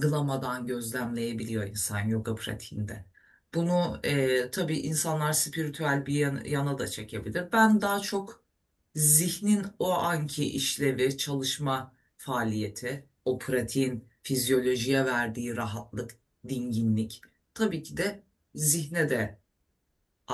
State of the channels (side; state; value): both; identical; correlation 1.00